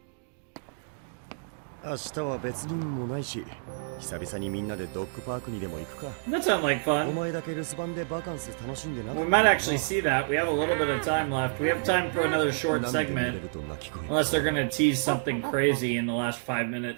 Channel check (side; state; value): left; silent; digital silence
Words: 明日は別にもないし、久々にみんなでドッグパークにでも行くか。 That sounds like お fun. 前だけ留守番でバカンス楽しんでなかった We might actually see that. We have a little bit of time left. We have time for another short 何度も見れ segment. ると泣き声 Unless they're gonna tease something crazy in the last 5